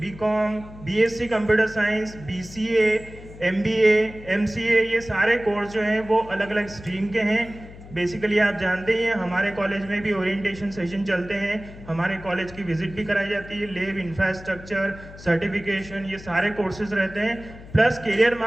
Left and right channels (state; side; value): noise; left; hum, 17 dB below the sound